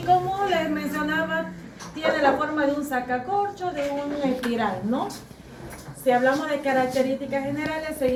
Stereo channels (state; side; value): identical; both; correlation 1.00